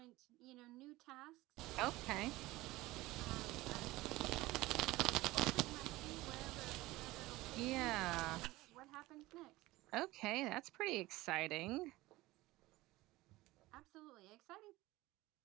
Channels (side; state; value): left; quieter; 19.0 dB